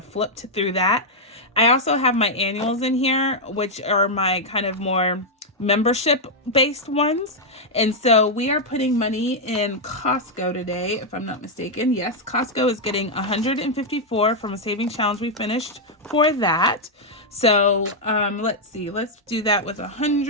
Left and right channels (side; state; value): both; normal; correlation -0.03